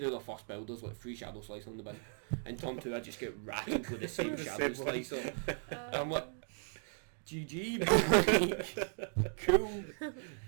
their first build there's like 3 Shadow Slicer on the bin. In turn two I just get rattled with the same The Shadow same one. Slicer. I'm like, GG, like, cool.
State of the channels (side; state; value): left; silent; 53 dB below the other